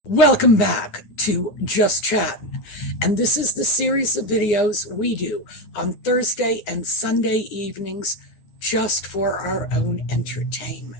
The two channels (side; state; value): right; late; 9.6 ms